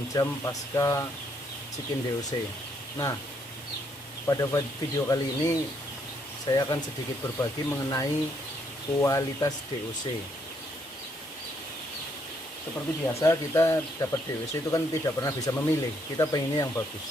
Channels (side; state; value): both; normal; correlation 0.72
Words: jam pasca check-in DOC. Nah, pada video kali ini saya akan sedikit berbagi mengenai kualitas DOC. Seperti biasa, kita dapat DOC itu kan tidak pernah bisa memilih, kita pengennya yang